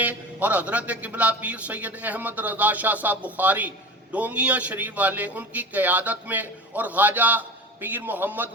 اور حضرت قبلہ پیر سید احمد رضا شاہ صاحب بخاری ڈونگیاں شریف والے ان کی قیادت میں، اور خواجہ پیر محمد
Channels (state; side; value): normal; both; correlation 0.32